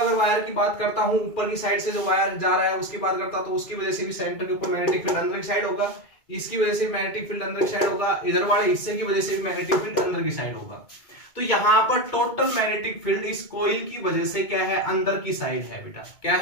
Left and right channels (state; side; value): late; right; 2.2 ms